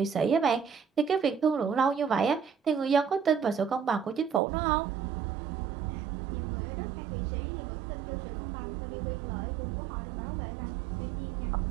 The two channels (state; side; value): drops out; left; at 4.4 s